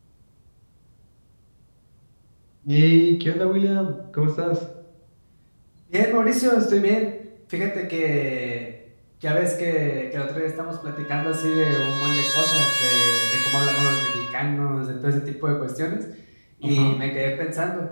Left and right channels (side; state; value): both; inverted; correlation -1.00